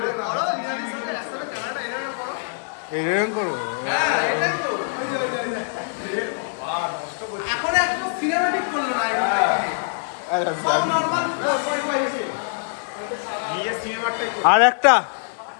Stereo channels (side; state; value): right; silent; digital silence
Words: করো, লিনাদির সাথে একসাথে ক্যামেরাটা এরকম করো। এরকম করো? হ্যাঁ এটাই তো। এখন একটা সিনেম্যাটিক করলো না এখন থেকে। সব নরমাল 4.5 এসে। আর একটা